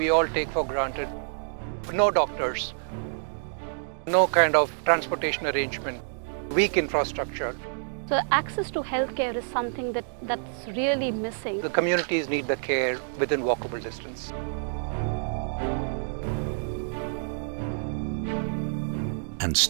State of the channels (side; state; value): left; silent; digital silence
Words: all take for granted. No doctors, no kind of transportation arrangement, weak infrastructure. So access to healthcare is something that's really missing. The communities need the care within walkable distance. And